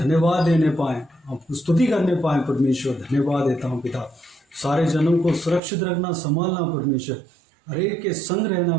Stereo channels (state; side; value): drops out; left; at 5.6 s